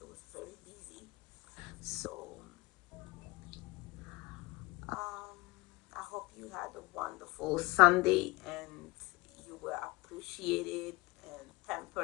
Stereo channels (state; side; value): quieter; right; 24.6 dB